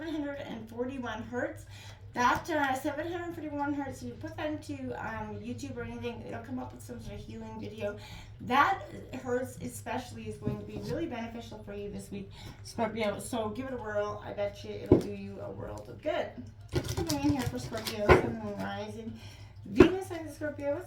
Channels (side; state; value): both; identical; correlation 1.00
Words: hertz. That 741 hertz, if you put that into YouTube or anything, it'll come up with some sort of healing video. That hertz especially is going to be really beneficial for you this week, Scorpio. So give it a whirl. I bet you it'll do you a world of good. Coming in here for Scorpio, Sun, Moon, Rising, Venus sign of Scorpio.